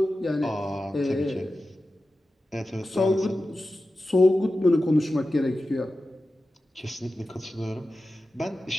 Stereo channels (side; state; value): both; normal; correlation 0.93